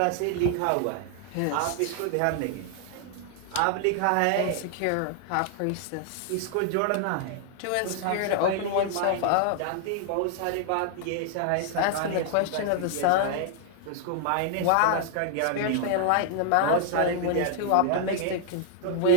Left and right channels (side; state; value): both; different; correlation 0.00